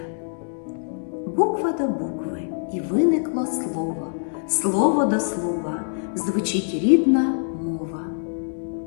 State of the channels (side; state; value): right; silent; digital silence